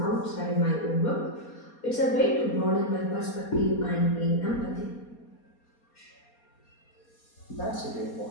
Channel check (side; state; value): right; late; 4.2 ms